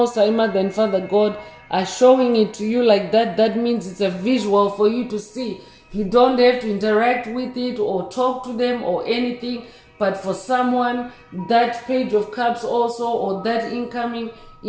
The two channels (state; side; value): identical; both; correlation 1.00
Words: High Mother and Father God are showing it to you like that, that means it's a visual for you to see. You don't have to interact with it or talk to them or anything. But for someone, that Page of Cups also, or that incoming